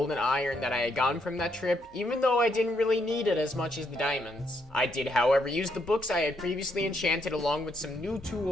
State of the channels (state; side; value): normal; both; correlation 0.75